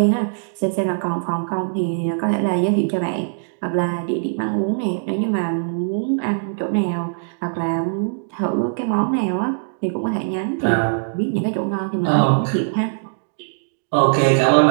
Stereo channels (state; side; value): silent; left; digital silence